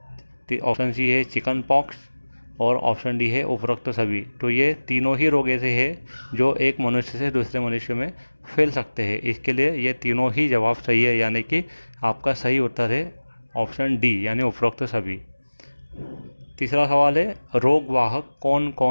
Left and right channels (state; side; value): inverted; both; correlation -1.00